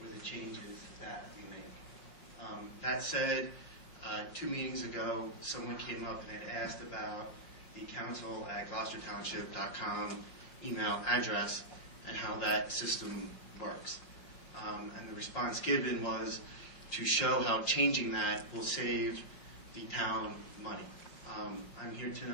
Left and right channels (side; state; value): right; late; 5.8 ms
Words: or the changes that we make. That said, 2 meetings ago, someone came up and had asked about the council at GloucesterTownship.com email address and how that system works. And the response given was to show how changing that will save the town money. I'm here